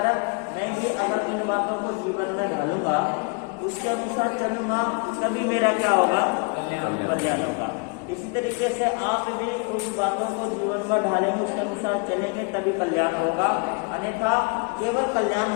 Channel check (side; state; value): right; quieter; 32.6 dB